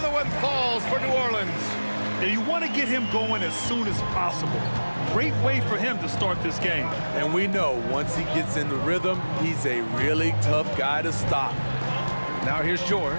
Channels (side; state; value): both; inverted; correlation -1.00